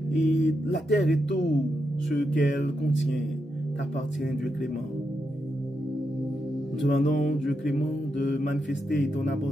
Et la terre et tout ce qu'elle contient t'appartient, Dieu clément. Nous demandons, Dieu clément, de manifester ton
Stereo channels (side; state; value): both; normal; correlation 0.84